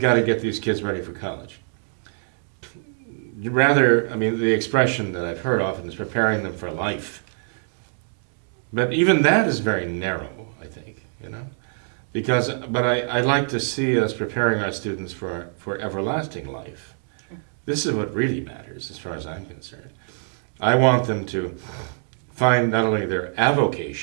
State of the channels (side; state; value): left; silent; digital silence